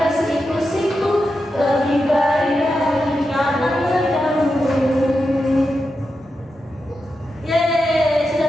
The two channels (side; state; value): both; normal; correlation 0.88